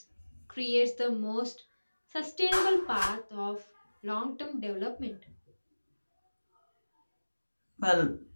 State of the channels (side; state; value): both; inverted; correlation -1.00